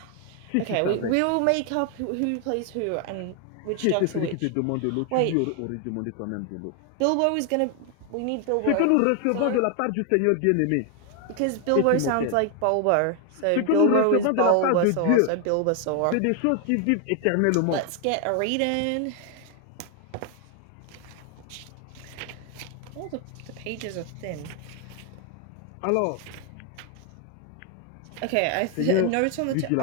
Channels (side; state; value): both; different; correlation 0.00